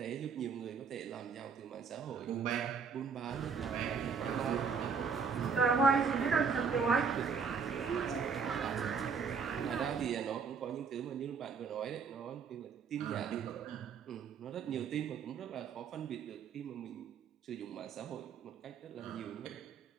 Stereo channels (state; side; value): quieter; left; 5.8 dB